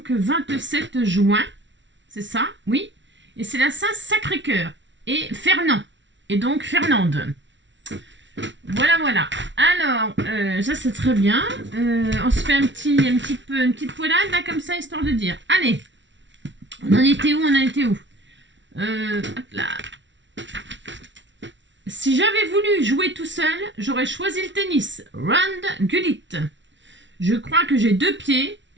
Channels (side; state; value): left; late; 0.54 ms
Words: 27 juin, c'est ça, oui. Et c'est la Saint-Sacré-Cœur et Fernand, et donc Fernande. Voilà. Alors, ça c'est très bien. On se fait une petite poilade là comme ça, histoire de dire. Allez, on en était où hop là. Si j'avais voulu jouer tout seul, j'aurais choisi le tennis. Rand Gullit. Je crois que j'ai 2 pieds.